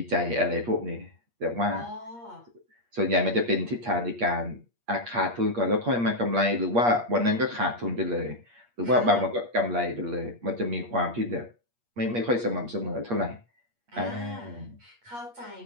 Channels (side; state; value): left; late; 8.5 ms